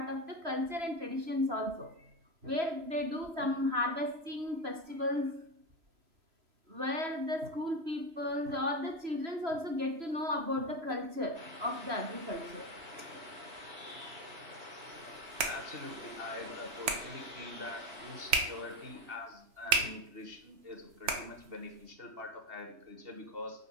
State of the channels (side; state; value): left; late; 3.4 ms